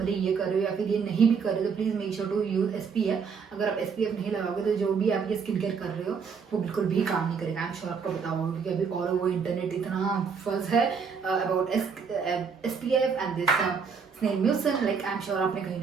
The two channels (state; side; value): quieter; left; 5.9 dB